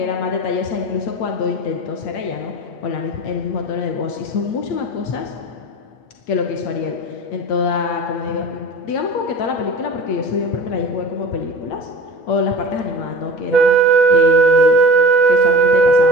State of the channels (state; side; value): late; right; 8.7 ms